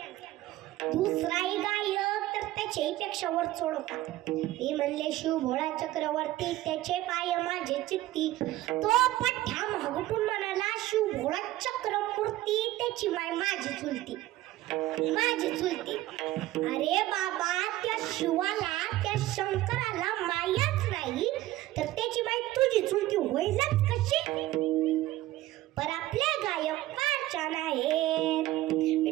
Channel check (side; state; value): left; quieter; 15.9 dB